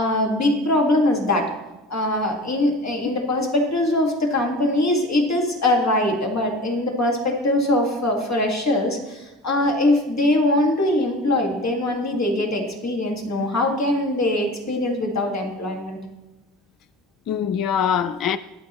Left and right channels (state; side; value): normal; both; correlation 0.38